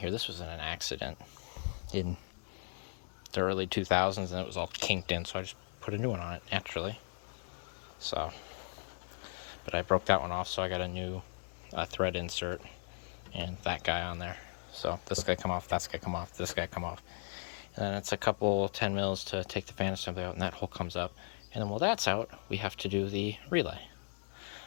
this was in an accident in the early 2000s, and it was all kinked in, so I just put a new one on it naturally. So, but I broke that one off, so I got a new thread insert and that guy on there. So this guy come off, that guy come off, this guy come off, and then it's a couple 10 mils to take the fan assembly out, and that hole comes up. And then while that's out, we have to do the relay,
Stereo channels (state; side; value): silent; right; digital silence